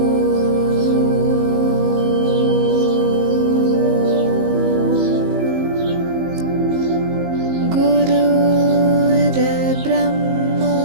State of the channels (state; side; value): late; left; 19 ms